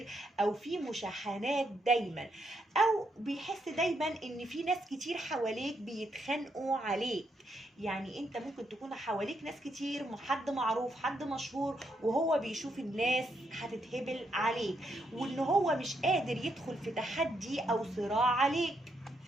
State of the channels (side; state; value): both; normal; correlation 0.78